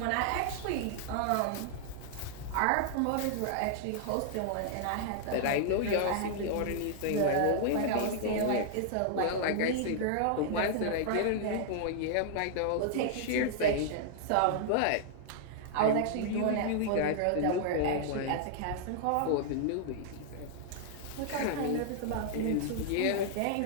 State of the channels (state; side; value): different; both; correlation -0.01